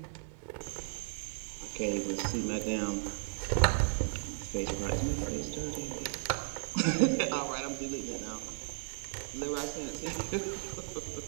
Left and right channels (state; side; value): silent; left; 54 dB below the other